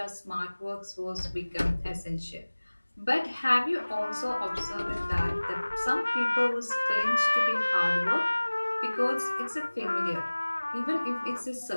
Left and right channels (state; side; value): inverted; both; correlation -1.00